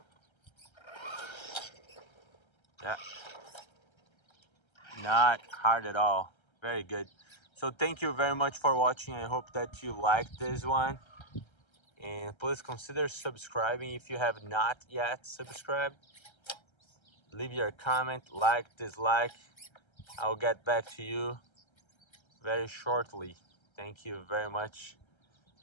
Yeah, not hard at all. Very good. So thank you very much for watching. I hope that you liked this one, and please consider subscribing if you have not yet subscribed. Leave your comment, like, dislike. I'll get back to you very shortly. Thank you very much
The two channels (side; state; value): right; late; 1.3 ms